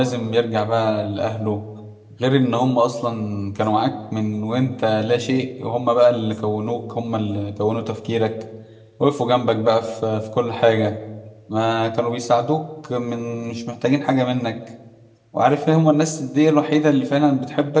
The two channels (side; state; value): both; identical; correlation 1.00